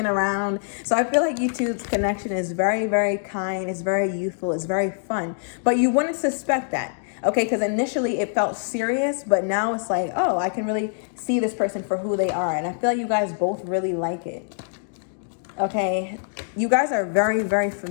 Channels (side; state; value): right; silent; digital silence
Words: around. So I feel like you two's connection is very, very kind. It's very youthful. It's very fun. But you wouldn't suspect that. Okay, because initially it felt serious, but now it's like, oh, I can really see this person for who they are. And I feel like you guys both really like it. Okay, you guys are very, very